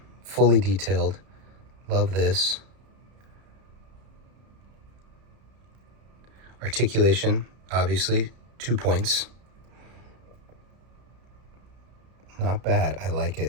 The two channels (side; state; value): left; late; 32 ms